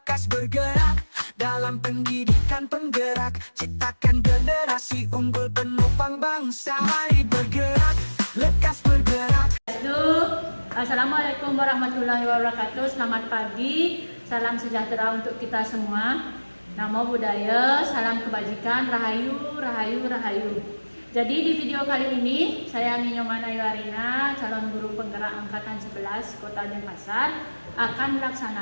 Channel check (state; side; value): inverted; both; correlation -1.00